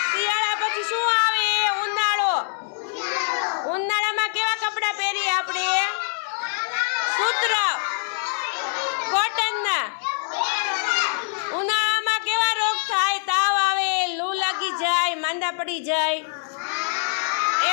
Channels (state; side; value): silent; right; digital silence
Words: શિયાળા પછી શું આવે? ઉનાળો. ઉનાળામાં કેવા કપડાં પહેરીએ આપણે? સૂત્ર, કોટનના. ઉનાળામાં કેવા રોગ થાય? તાવ આવે, લૂ લાગી જાય, માંદા પડી જાય,